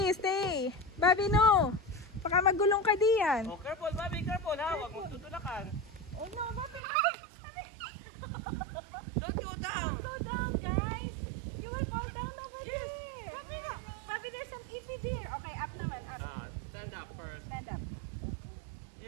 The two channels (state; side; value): drops out; left; at 6.8 s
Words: stay. Bobby, no. Baka magulong ka diyan. Oh, careful, Bobby, careful ha. Huwag mong tutulakan. Oh no, Bobby. Don't go down. Go down, guys. You will fall down over there. Bobby, no. Bobby, there's some EP there. Okay, up naman, up. Stand up first. Stand up.